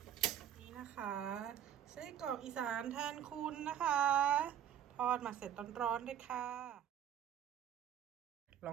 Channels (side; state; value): left; quieter; 10.1 dB